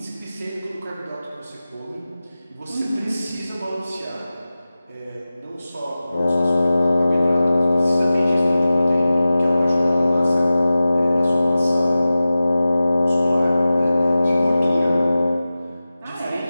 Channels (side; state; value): both; inverted; correlation -0.95